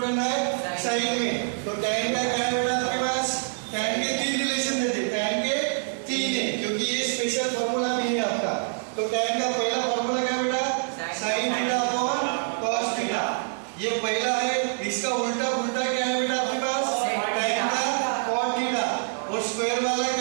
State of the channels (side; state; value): left; silent; digital silence